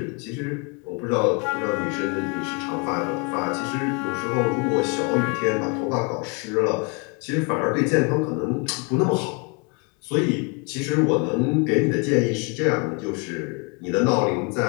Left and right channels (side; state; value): right; quieter; 33.4 dB